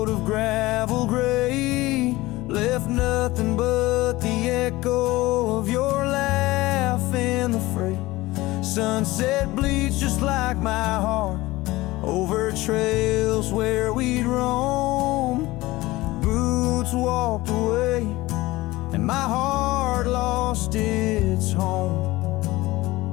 of gravel gray, left nothing but the echo of your laugh in the fray. Sunset bleeds just like my heart over trails where we'd roam. Boots walked away and my heart lost its home.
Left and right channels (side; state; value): right; quieter; 19.3 dB